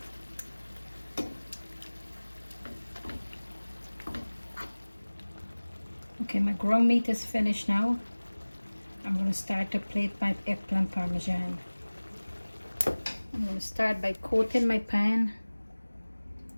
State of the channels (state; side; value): inverted; both; correlation -1.00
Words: Okay, my ground meat is finished now. I'm going to start to plate my eggplant parmesan. I'm going to start by coating my pan